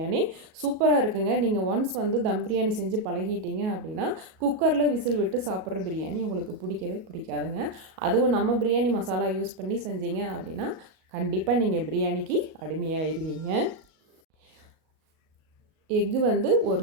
சூப்பராக இருக்குங்க. நீங்கள் ஒன்ஸ் வந்து தம் பிரியாணி செஞ்சு பழகிட்டீங்க அப்படின்னா குக்கரில் விசில் விட்டு சாப்பிட்ற பிரியாணி உங்களுக்கு பிடிக்கவே பிடிக்காதுங்க. அதுவும் நம்ம பிரியாணி மசாலா யூஸ் பண்ணி செஞ்சீங்க அப்படின்னா கண்டிப்பாக நீங்கள் பிரியாணிக்கு அடிமையாயிருவீங்க. எக்கு வந்து ஒரு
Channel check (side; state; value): left; late; 38 ms